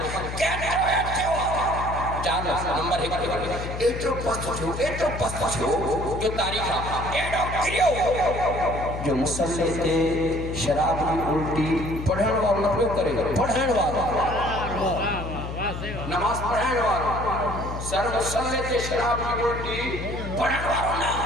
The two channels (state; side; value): noise; left; hum, 7 dB below the sound